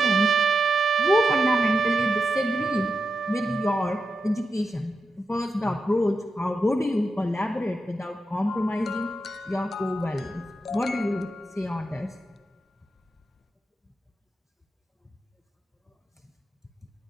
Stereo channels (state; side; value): normal; both; correlation 0.88